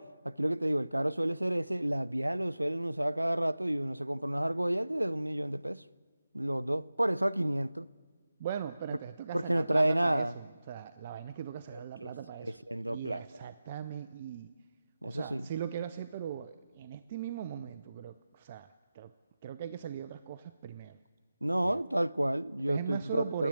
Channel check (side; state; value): both; inverted; correlation -0.95